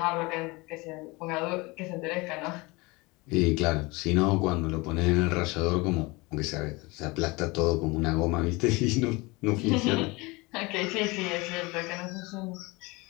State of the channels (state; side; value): quieter; right; 24.5 dB